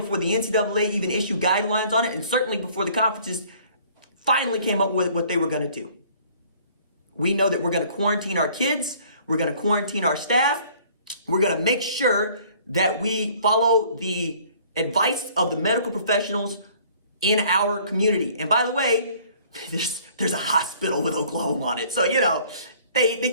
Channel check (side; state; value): both; inverted; correlation -0.56